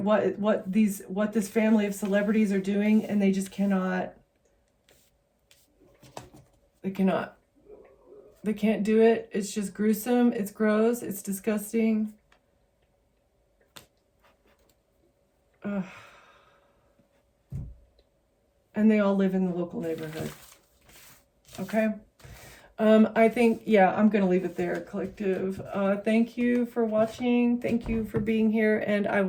what this family of celebrities are doing, and they just cannot. They can't do it. It's just gruesome. It's gross. It's disgusting. And they all live in the local neighborhood. Okay. I think, yeah, I'm going to leave it there, collective. Thank you for watching. Thank you for being here, and I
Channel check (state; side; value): identical; both; correlation 1.00